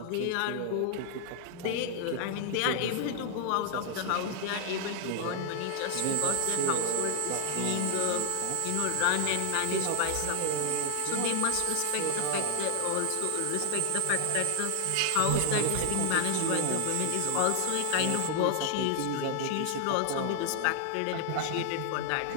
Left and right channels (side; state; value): both; different; correlation 0.00